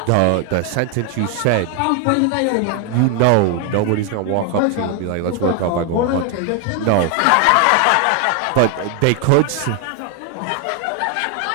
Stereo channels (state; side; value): different; both; correlation 0.01